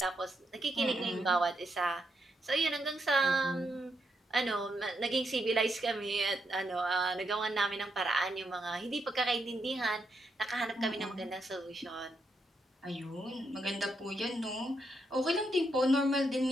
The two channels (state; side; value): normal; both; correlation 0.80